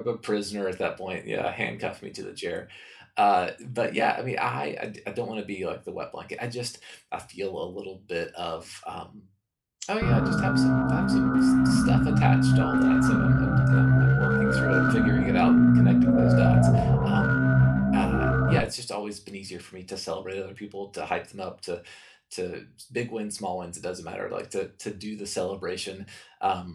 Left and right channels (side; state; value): both; identical; correlation 1.00